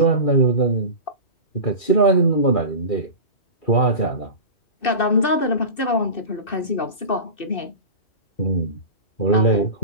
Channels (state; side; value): late; right; 2.6 ms